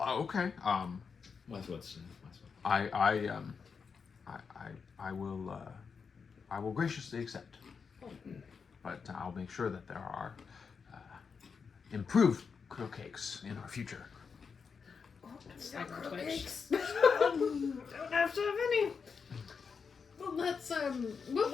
What's I will graciously accept, but I'll make sure that there are improved krill cakes in our future. Cyber Twitch. Don't have to have any. Well, let's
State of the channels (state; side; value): quieter; right; 5.7 dB